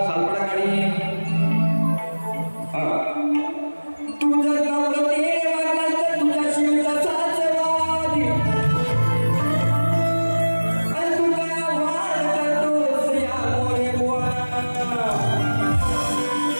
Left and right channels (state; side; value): inverted; both; correlation -1.00